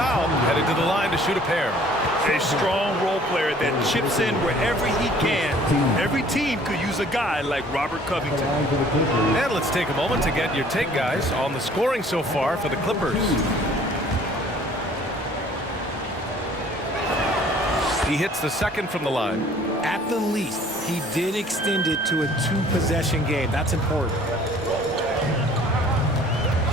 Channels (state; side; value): normal; both; correlation 0.54